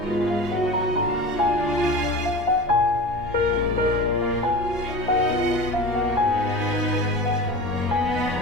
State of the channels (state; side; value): normal; both; correlation 0.32